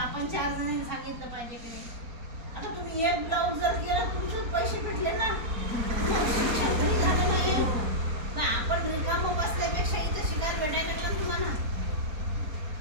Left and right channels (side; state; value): left; late; 4.3 ms